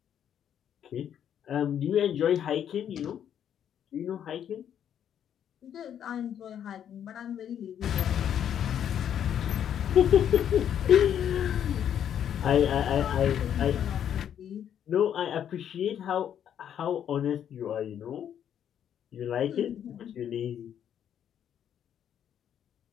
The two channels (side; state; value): right; quieter; 9.4 dB